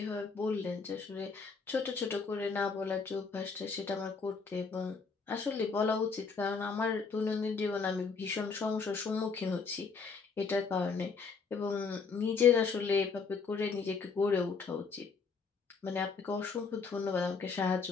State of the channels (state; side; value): quieter; right; 5.1 dB